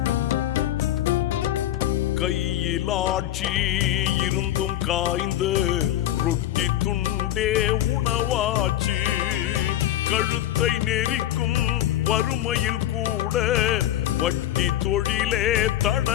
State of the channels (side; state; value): right; quieter; 12.8 dB